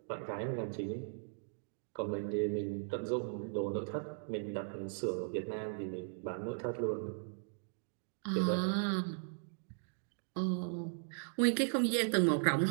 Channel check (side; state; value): left; silent; digital silence